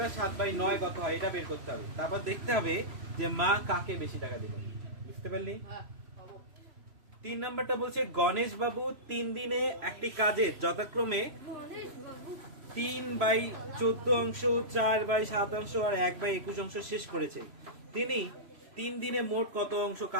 7/9 কত হয় এটা বের করতে হবে। তারপর দেখতে হবে যে মা কাকে বেশি টাকা দিল। বুঝতে পারলি? হ্যাঁ খাবো। 3 নাম্বারটা বলছে গণেশ বাবু 3 দিনে একটি কাজের যথাক্রমে 3/14 অংশ, 4/7 অংশ আর 1/21 অংশ শেষ করেছে। তিনি 3 দিনে মোট কত অংশ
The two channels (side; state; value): left; late; 3.0 ms